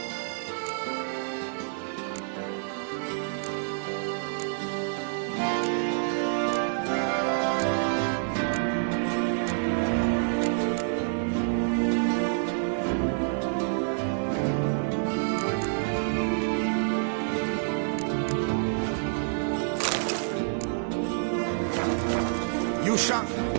You shan't find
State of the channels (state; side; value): silent; left; 59 dB below the other